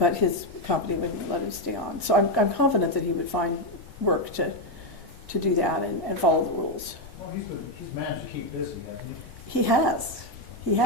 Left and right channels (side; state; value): both; normal; correlation 0.04